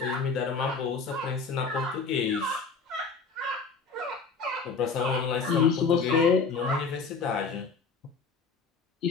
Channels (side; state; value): right; quieter; 4.8 dB